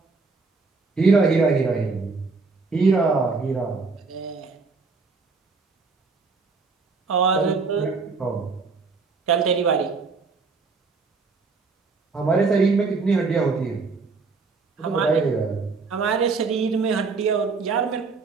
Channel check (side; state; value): left; quieter; 4.4 dB